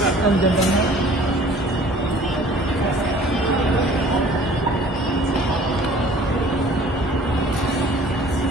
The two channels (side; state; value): both; normal; correlation 0.51